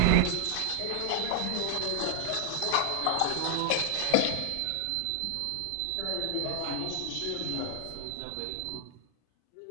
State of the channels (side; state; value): both; different; correlation 0.00